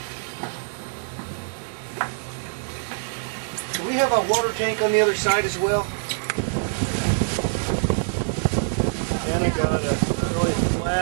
Do we have a water tank on the other side as well? And I got a really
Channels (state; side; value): silent; left; digital silence